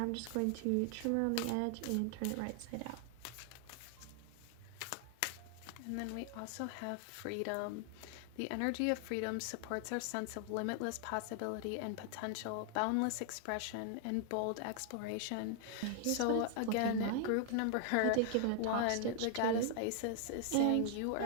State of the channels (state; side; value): different; both; correlation 0.00